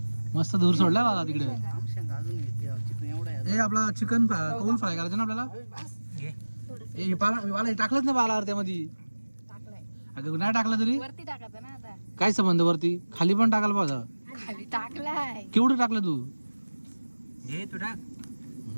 मस्त धूर सोडलाय मला तिकडे. हे आपला चिकन कौल फ्राय करायचं ना आपल्याला. मला टाकलंच ना बाला त्यामध्ये. टाकलाय अगं नाही टाकलं तरी वरती टाकायचं ना. आता काय संबंध वरती खाली पण टाकायला पाहिजे. खाली टाकलाय. केवढं टाकलं तू. घे तू टाक.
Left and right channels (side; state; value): both; inverted; correlation -1.00